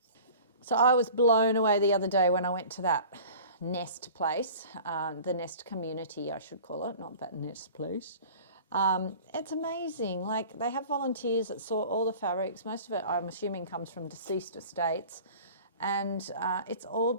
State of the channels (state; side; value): inverted; both; correlation -0.43